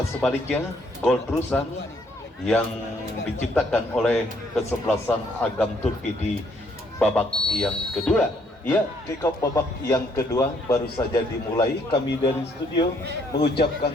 sebaliknya gol terusan yang diciptakan oleh kesebelasan Agam Turki di babak yang kedua? Ya, kick off babak yang kedua baru saja dimulai. Kami dari studio mengucapkan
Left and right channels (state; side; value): normal; both; correlation 0.68